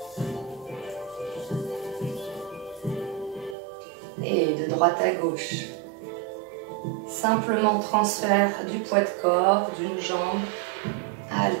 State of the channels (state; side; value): drops out; left; at 3.6 s